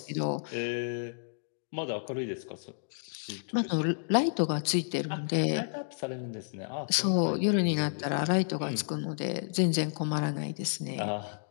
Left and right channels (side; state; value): right; silent; digital silence